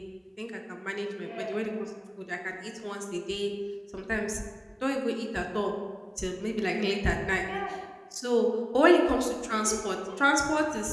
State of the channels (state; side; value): identical; both; correlation 1.00